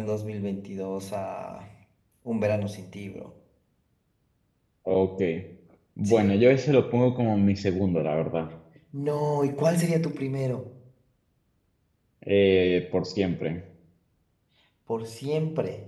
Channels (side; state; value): both; identical; correlation 1.00